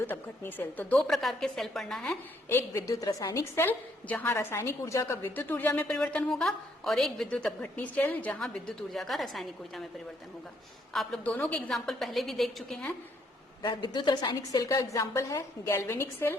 अपघटनी सेल। तो दो प्रकार के सेल पढ़ना है। एक विद्युत रासायनिक सेल जहां रासायनिक ऊर्जा का विद्युत ऊर्जा में परिवर्तन होगा, और एक विद्युत अपघटनी सेल जहां विद्युत ऊर्जा का रासायनिक ऊर्जा में परिवर्तन होगा। आप लोग दोनों के एग्जाम्पल पहले भी देख चुके हैं। विद्युत रासायनिक सेल का एग्जाम्पल है गैल्वेनिक सेल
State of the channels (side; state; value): both; normal; correlation 0.70